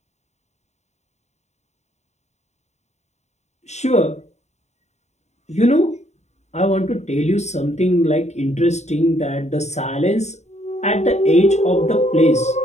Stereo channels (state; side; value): late; right; 0.33 ms